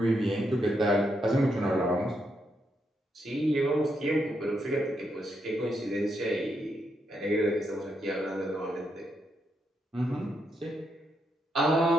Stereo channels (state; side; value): normal; both; correlation 0.80